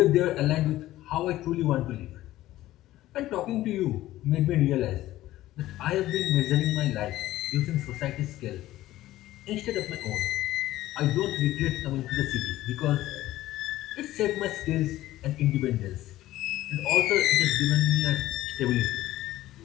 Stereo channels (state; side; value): quieter; right; 15.3 dB